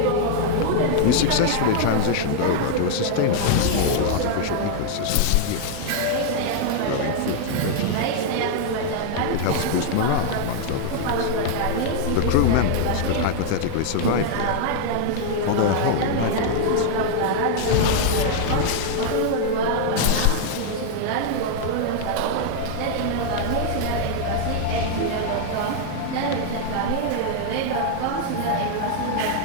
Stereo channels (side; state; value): both; different; correlation 0.00